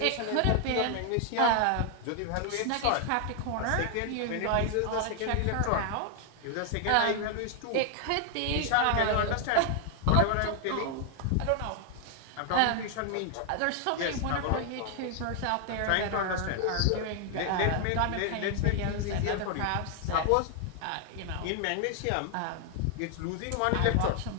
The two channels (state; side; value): different; both; correlation 0.00